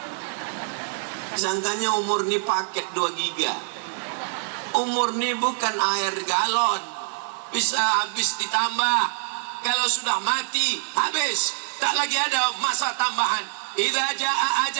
Sangkanya umur ini paket 2 giga. Umur ini bukan air galon, bisa habis ditambah. Kalau sudah mati, habis, tak lagi ada masa tambahan. Idza jaa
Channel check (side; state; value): left; silent; digital silence